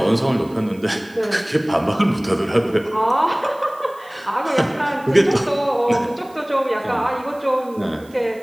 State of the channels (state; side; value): noise; right; hiss, 27 dB below the sound